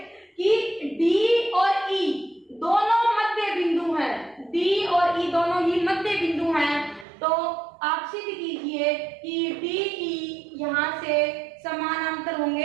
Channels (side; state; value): left; drops out; at 7.1 s